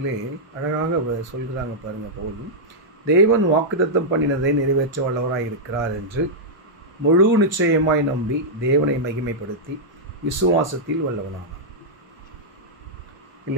அழகாக சொல்கிறாங்க பாருங்கள். பவுல் தேவன் வாக்குத்தத்தம் பண்ணினதை நிறைவேற்ற வல்லவராய் இருக்கிறார் என்று முழு நிச்சயமாய் நம்பி தேவனை மகிமைப்படுத்தி விசுவாசத்தில் வல்லவனானார்.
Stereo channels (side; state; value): both; normal; correlation -0.08